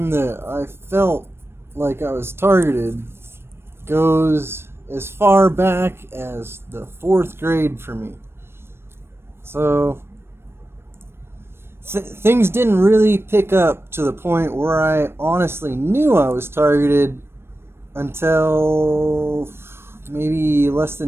that I felt like I was targeted goes as far back as the fourth grade for me. So things didn't really pick up to the point where I honestly knew I was targeted until maybe less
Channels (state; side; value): late; left; 0.12 ms